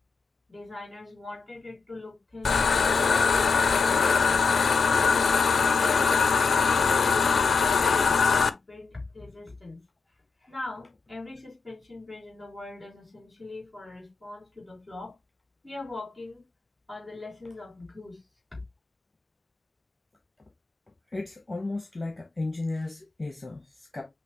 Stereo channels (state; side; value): quieter; right; 5.0 dB